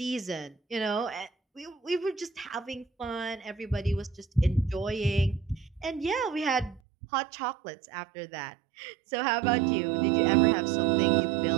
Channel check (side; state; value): left; drops out; at 6.8 s